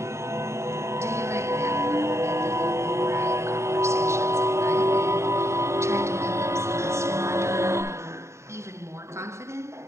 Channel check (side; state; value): left; late; 0.14 ms